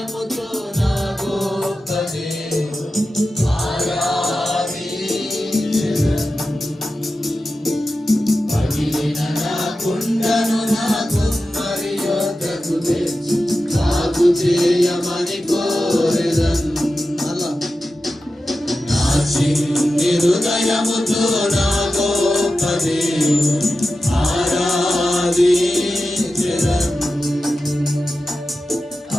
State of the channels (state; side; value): normal; both; correlation 0.92